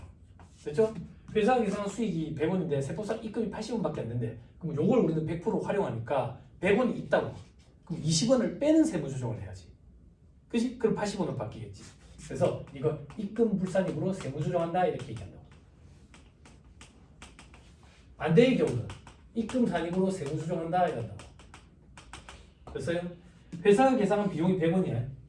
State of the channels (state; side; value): identical; both; correlation 1.00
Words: 됐죠? 회사 계산한 수익이 100원인데 세법상 입금이 80원밖에 안 된대. 그럼 요걸 우리는 100% 활용하니까 100원이 있다고. 그럼 20원을 빼는 세무조정을 해야지. 그치? 그럼 80원으로 바뀌겠지. 그래서 이거 입금 불산입으로 세무조정한다 이렇게 얘기한다고. 반대의 경우는 입금 산입으로 세무조정한다 이런다고. 됐어요? 회사가 계산한 비용이 100원이야.